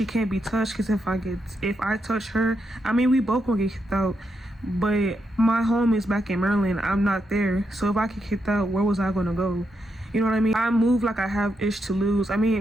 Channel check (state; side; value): normal; both; correlation 0.82